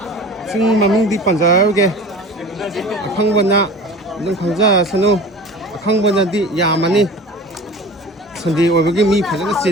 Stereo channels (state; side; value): normal; both; correlation 0.39